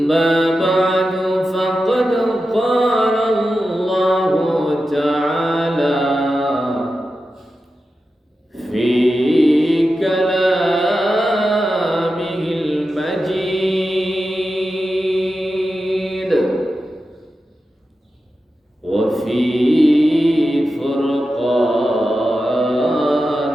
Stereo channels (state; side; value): normal; both; correlation 0.91